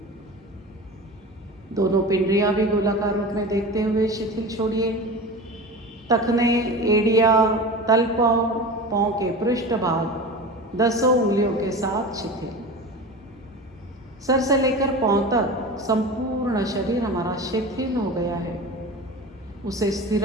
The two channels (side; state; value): both; normal; correlation 0.31